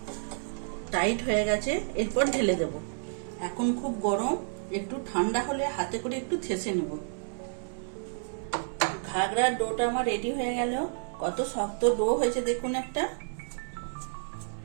টাইট হয়ে গেছে, এরপর ঢেলে দেব। এখন খুব গরম, একটু ঠান্ডা হলে হাতে করে একটু থেসে নেব। ঘাগড়ার ডোটা আমার রেডি হয়ে গেল। কত শক্ত ডো হয়েছে দেখুন একটা।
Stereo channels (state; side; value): silent; left; 58 dB below the other